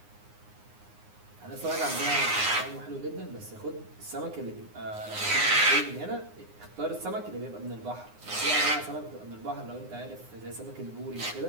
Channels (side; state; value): left; late; 9.7 ms